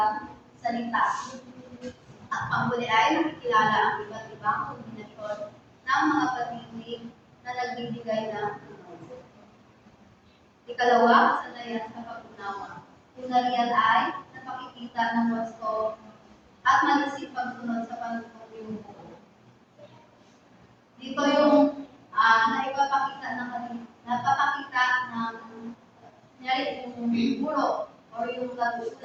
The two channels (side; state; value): both; identical; correlation 1.00